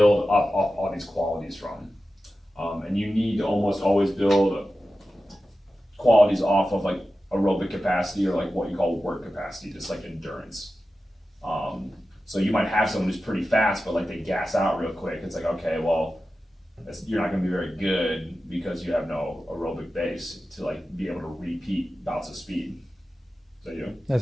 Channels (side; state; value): both; normal; correlation 0.93